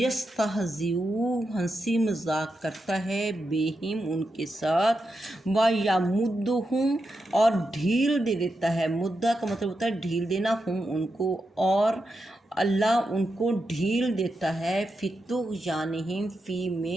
ہنسی مذاق کرتا ہے، بہم ان کے ساتھ، ویمدہم اور ڈھیل دے دیتا ہے، مدہ کا مطلب ہوتا ہے ڈھیل دینا، ہم ان کو اور اللہ ان کو ڈھیل دیتا ہے، فی طغیانہم فی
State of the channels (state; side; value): normal; both; correlation 0.87